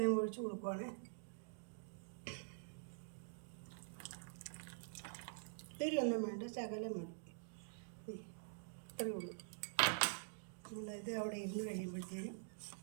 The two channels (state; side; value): silent; left; digital silence